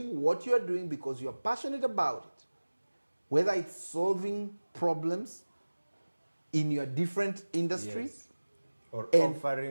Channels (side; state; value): both; inverted; correlation -1.00